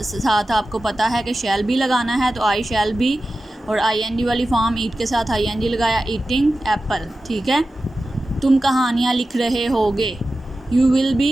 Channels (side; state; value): both; normal; correlation 0.94